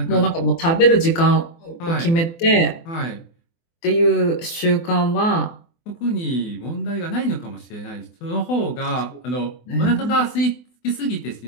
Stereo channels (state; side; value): late; right; 24 ms